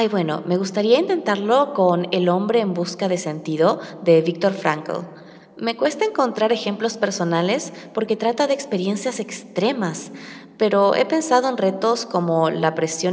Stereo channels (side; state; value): both; identical; correlation 1.00